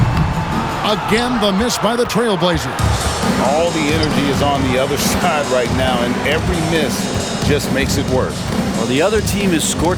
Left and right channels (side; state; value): both; identical; correlation 1.00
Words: Again, the miss by the Trailblazers. All the energy is on the other side right now, and every miss just makes it worse. Well, the other team is